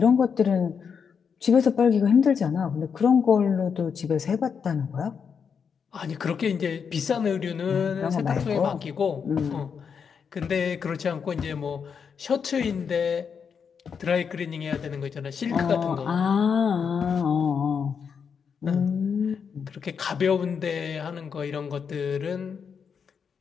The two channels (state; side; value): quieter; right; 6.5 dB